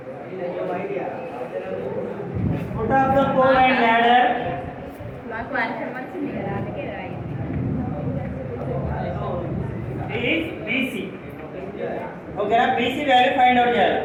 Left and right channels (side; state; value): both; identical; correlation 1.00